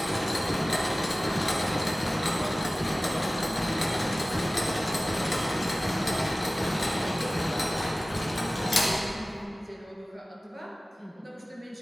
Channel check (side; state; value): both; normal; correlation 0.97